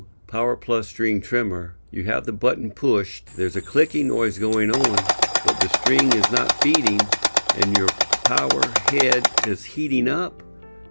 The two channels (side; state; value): both; inverted; correlation -1.00